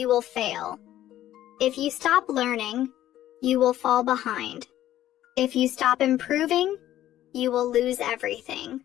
will fail. If you stop learning, you will fall behind. If you stop improving, you will lose everything.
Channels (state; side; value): quieter; right; 13.0 dB